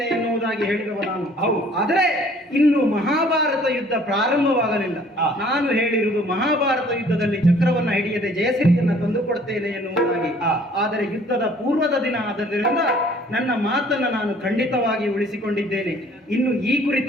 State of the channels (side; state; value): both; normal; correlation 0.56